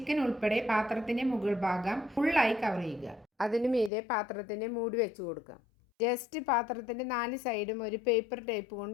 ഉൾപ്പെടെ പാത്രത്തിന്റെ മുകൾ ഭാഗം ഫുള്ളായി കവർ ചെയ്യുക. അതിനു മീതെ പാത്രത്തിന്റെ മൂടി വെച്ച് കൊടുക്കാം. ജസ്റ്റ് പാത്രത്തിന്റെ 4 സൈഡും ഒരു പേപ്പർ ടേപ്പ്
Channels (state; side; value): drops out; right; at 3.9 s